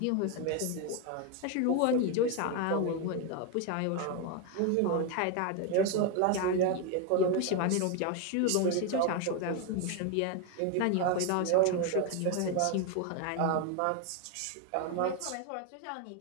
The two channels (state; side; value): different; both; correlation 0.02